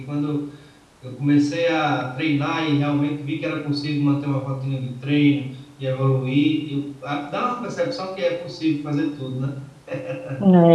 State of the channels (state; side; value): identical; both; correlation 1.00